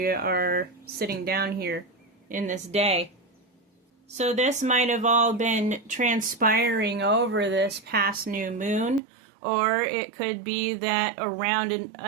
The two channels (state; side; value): drops out; left; at 9.0 s